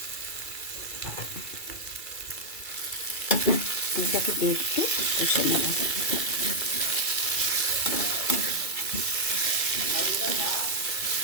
আলুটাকে দিয়ে একটু কষে নেব।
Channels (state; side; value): late; right; 2.3 ms